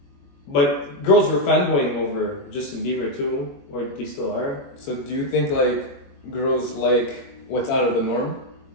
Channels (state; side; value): late; right; 21 ms